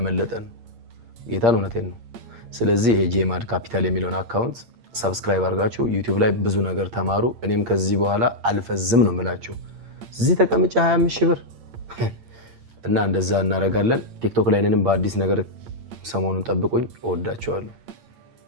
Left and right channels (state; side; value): late; left; 8.7 ms